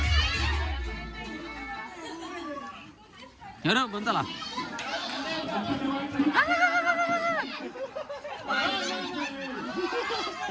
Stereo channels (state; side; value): identical; both; correlation 1.00